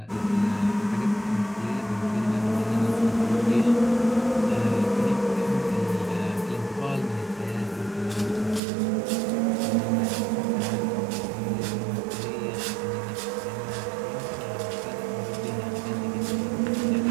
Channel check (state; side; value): drops out; left; at 8.6 s